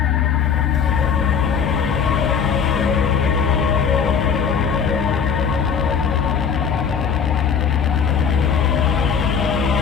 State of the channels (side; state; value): right; quieter; 6.8 dB